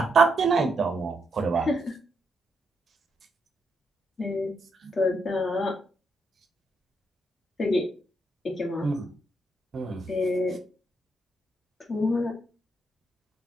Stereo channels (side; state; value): both; normal; correlation 0.78